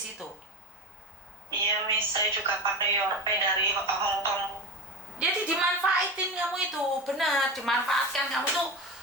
Iya, Miss. Saya juga pakai Yorpay dari Hong Kong. Jadi dimanfaatin kamu itu, benar, dimanfaatkan kamu tuh.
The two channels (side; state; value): both; normal; correlation 0.25